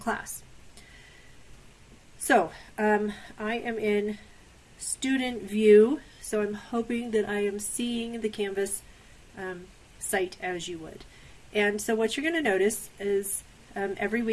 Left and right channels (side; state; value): both; identical; correlation 1.00